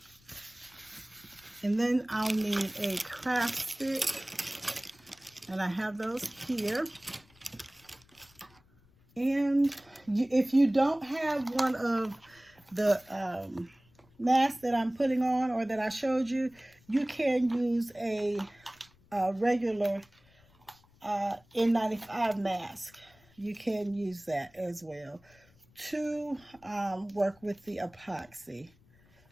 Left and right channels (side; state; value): left; noise; rumble, 30 dB below the sound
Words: And then I'll need a craft stick. And I have those here. And if you don't have one of the masks that I'm putting on or that I showed you, you can use a regular N95 mask. You can use that as well to work with the epoxy.